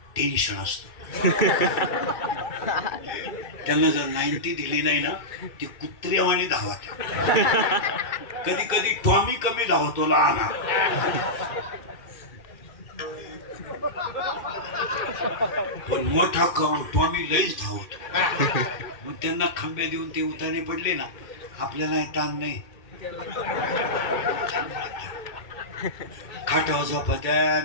टेन्शन असतं त्यांना जर 90 दिली नाही ना ती कुत्र्यावाने धावत कधी कधी टॉमी कमी धावतो लहान पण मोठा टॉमी लईच धावतो मग त्यांना खंबे देऊन ते उतारे पडले ना आपल्याला ताण नाही खाटावर झोपत्या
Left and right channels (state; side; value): late; right; 2.4 ms